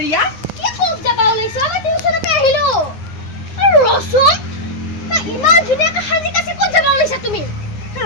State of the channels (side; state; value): right; late; 9.8 ms